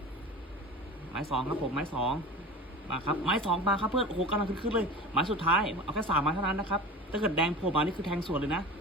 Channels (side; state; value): both; normal; correlation 0.33